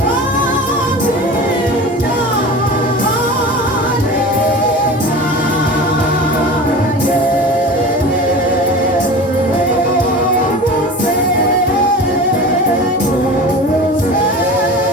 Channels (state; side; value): normal; both; correlation 0.34